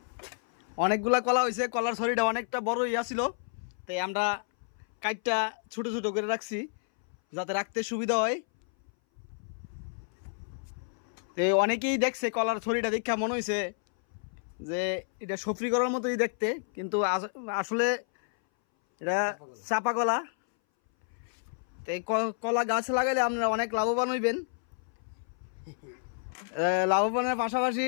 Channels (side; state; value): right; silent; 58 dB below the other